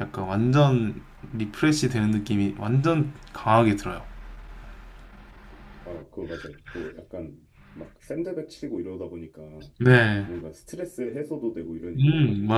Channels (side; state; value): both; identical; correlation 1.00